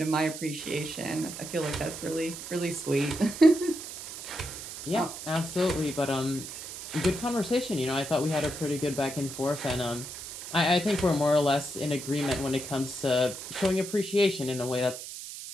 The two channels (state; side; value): noise; right; hiss, 10 dB below the sound